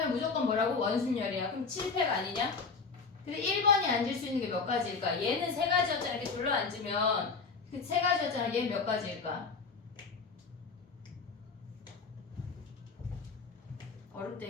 무조건 뭐라고? 원순열이야. 그럼 7팩 아니냐? 근데 1번이 앉을 수 있는 게 몇 가지일까? 얘는 세 가지였잖아. 이렇게 둘러 앉으면 그 세 가지였잖아. 얘는 몇 가지일까?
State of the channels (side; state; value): right; quieter; 4.8 dB